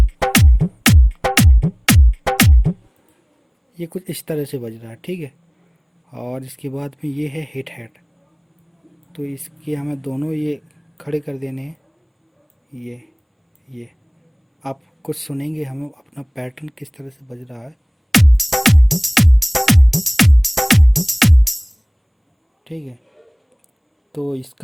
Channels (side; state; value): both; identical; correlation 1.00